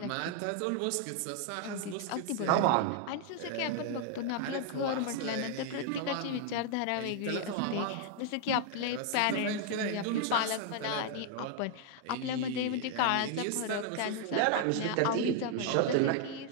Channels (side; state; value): both; different; correlation 0.00